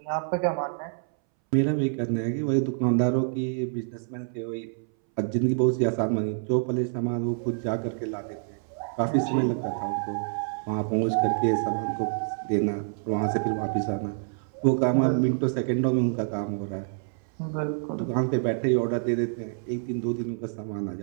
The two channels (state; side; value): silent; left; 60 dB below the other